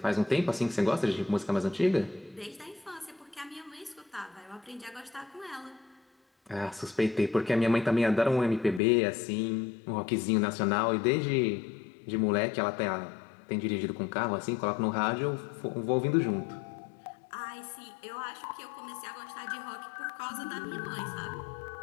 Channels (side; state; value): right; drops out; at 8.8 s